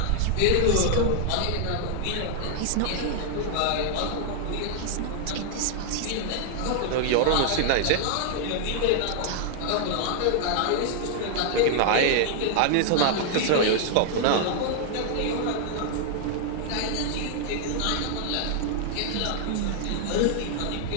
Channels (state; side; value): different; both; correlation 0.00